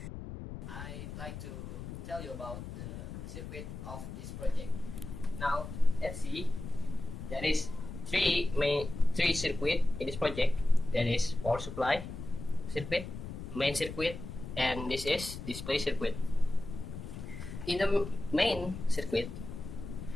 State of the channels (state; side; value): noise; left; rumble, 9 dB below the sound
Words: I'd like to tell you about the circuit of this project. Now, let's see. There is three circuit in this project. There is power supply circuit, main circuit, and this is display circuit. In the main circuit,